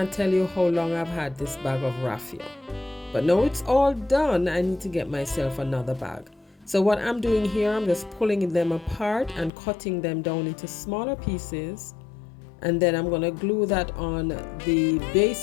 tell you how long I've had this bag of raffia. But now it's all done. I need to get myself another bag. So what I'm doing here, I'm just pulling them apart and cutting them down into smaller pieces. And then I'm going to glue that on the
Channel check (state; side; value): drops out; right; at 9.5 s